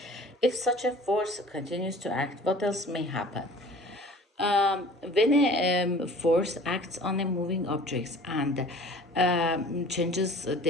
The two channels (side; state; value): both; normal; correlation 0.46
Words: If such a force continues to act, what else may happen? When a force acts on a moving object and changes